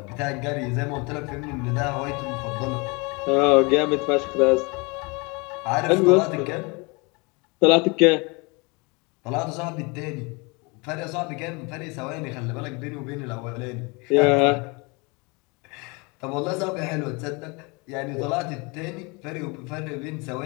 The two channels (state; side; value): quieter; right; 28.7 dB